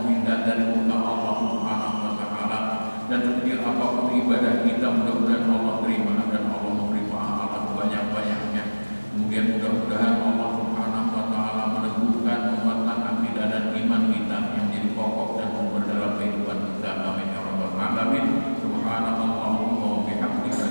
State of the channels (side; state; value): both; inverted; correlation -1.00